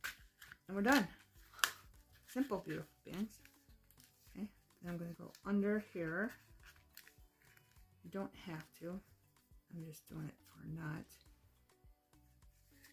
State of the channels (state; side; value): identical; both; correlation 1.00